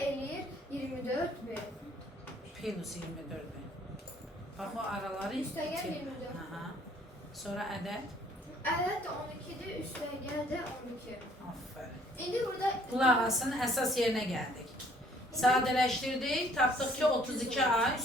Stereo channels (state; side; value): normal; both; correlation 0.60